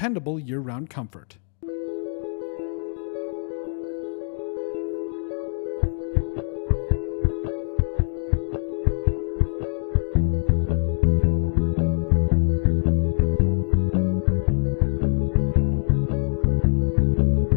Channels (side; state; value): right; silent; digital silence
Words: year-round comfort. When you're building a home in the Black Hills, who you build with matters. Legacy Custom Homes and Design isn't just another builder, we're your neighbors. Based right here in Spearfish, we've built over 375 homes throughout the Black Hills, each one tailored to the families who live in them. Our name means more because we go the